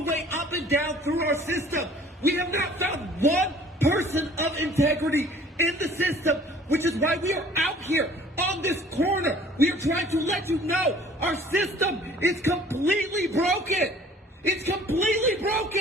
way up and down through our system. We have not found one person of integrity in the system, which is why we are out here on this corner. We are trying to let you know our system is completely broken. It's completely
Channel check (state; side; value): normal; both; correlation 0.52